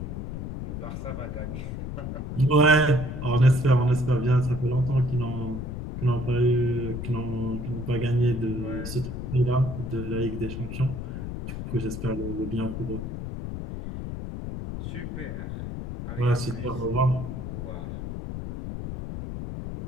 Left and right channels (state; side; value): noise; left; rumble, 6 dB below the sound